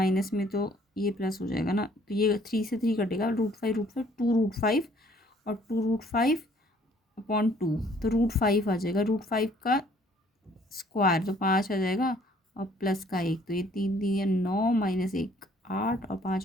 में तो ये प्लस हो जाएगा ना, तो ये 3 से 3 कटेगा, √5 2√5 और 2√5/2, तो √5 आ जाएगा, √5 का स्क्वायर तो 5 आ जाएगा, और प्लस का 1, तो ये 3 3 या 9 -1 8 और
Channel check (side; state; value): both; normal; correlation 0.60